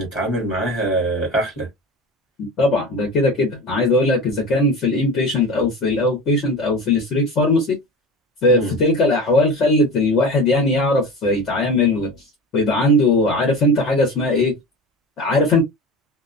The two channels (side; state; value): both; normal; correlation 0.31